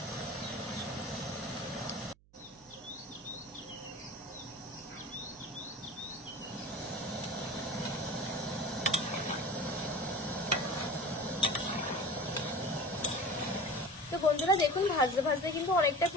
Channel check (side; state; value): right; noise; hum, 28 dB below the sound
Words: তো বন্ধুরা দেখুন ভাজতে ভাজতে কিন্তু অনেকটা